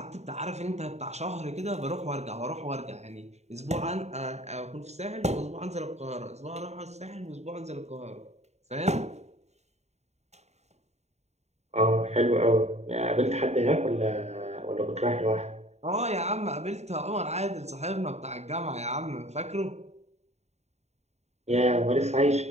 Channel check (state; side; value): late; left; 0.32 ms